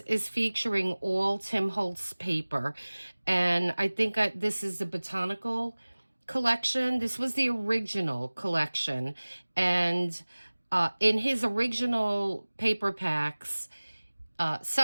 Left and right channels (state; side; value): inverted; both; correlation -1.00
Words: featuring all Tim Holtz paper, and I think this is the botanical collection. This was the original collection, and in his original paper packs,